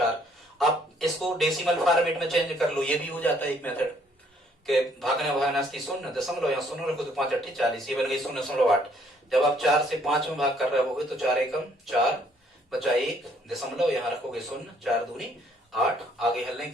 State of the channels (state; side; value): normal; both; correlation 0.65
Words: आप इसको डेसिमल फॉर्मेट में चेंज कर लो, ये भी हो जाता है एक मेथड के भागने भागनास्ती 0 यहाँ 0 रखो तो 5×8 = 40, ये बन गई 0.8। जब आप 4 से 5 में भाग कर रहे होगे तो 4 एकम 4 बचा 1 दशमलव, यहाँ रखोगे 0, 4 दूनी 8, आगे हल नहीं